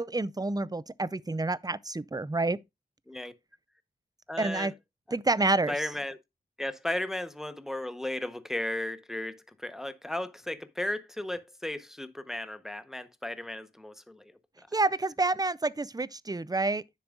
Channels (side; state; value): both; normal; correlation 0.58